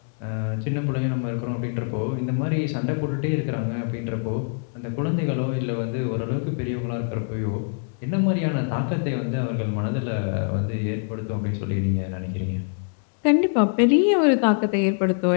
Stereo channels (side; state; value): right; silent; digital silence